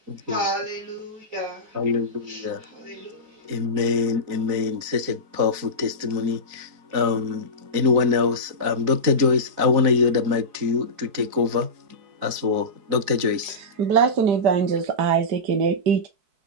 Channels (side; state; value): left; late; 4.6 ms